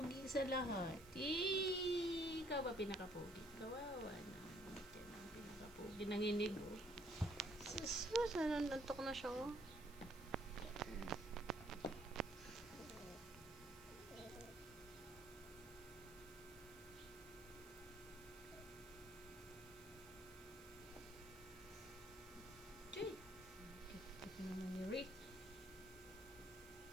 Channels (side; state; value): right; noise; hiss, 19 dB below the sound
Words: sa lahat. Ikaw ba pinakapugi? Kawawa na. Yan ang pinakapugi. Nanginig oh. Sus, nanantok na siya oh. Choy. Ito naman ni Rick.